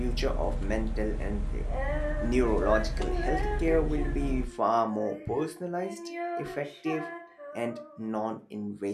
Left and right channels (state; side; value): identical; both; correlation 1.00